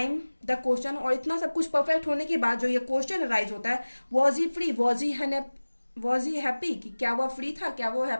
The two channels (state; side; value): inverted; both; correlation -1.00